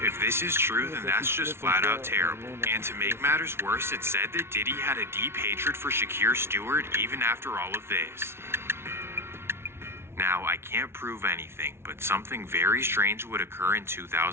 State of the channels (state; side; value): late; left; 0.12 ms